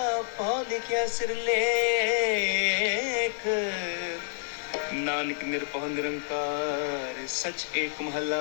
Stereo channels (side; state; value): right; silent; digital silence